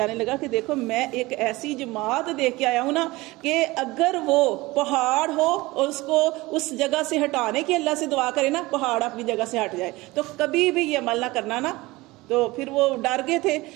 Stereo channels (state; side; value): quieter; left; 20.8 dB